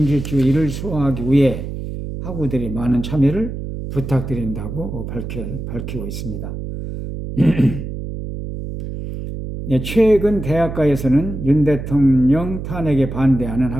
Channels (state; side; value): noise; right; hum, 7 dB below the sound